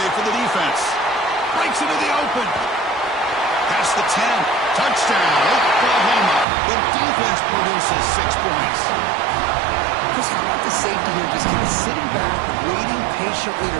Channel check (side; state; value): left; drops out; at 6.5 s